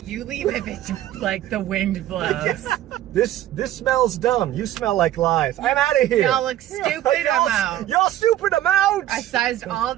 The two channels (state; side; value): quieter; left; 13.3 dB